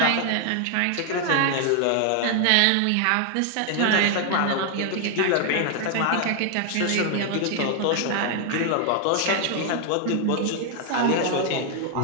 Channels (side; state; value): both; different; correlation 0.00